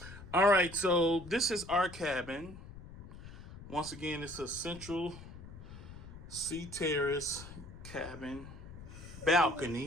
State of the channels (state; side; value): noise; left; rumble, 14 dB below the sound